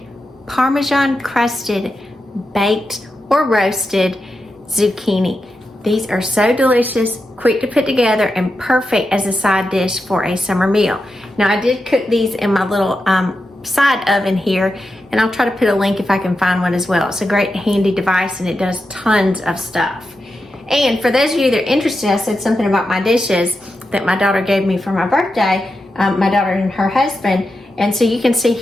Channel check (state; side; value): normal; both; correlation 0.88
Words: Parmesan crusted, baked, or roasted zucchini. These are so delicious, quick to put together, and perfect as a side dish for a summer meal. Now I did cook these in my little side oven here, and I'll try to put a link if I can find one as well. It's a great handy device, and it does tons of stuff. And for those of you that are interested, I said something about my dishes that my daughter gave me for my birthday, my daughter and her husband, and so you can see